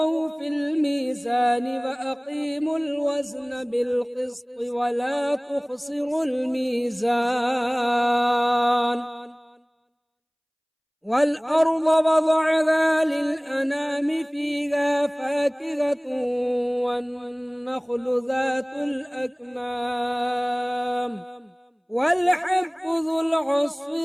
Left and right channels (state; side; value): identical; both; correlation 1.00